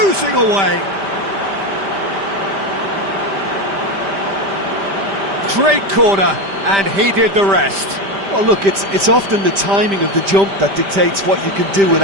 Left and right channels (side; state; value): left; late; 5.1 ms